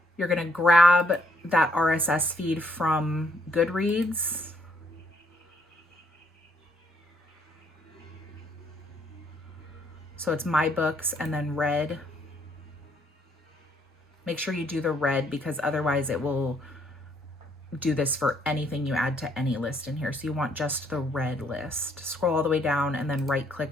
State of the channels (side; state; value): both; normal; correlation 0.69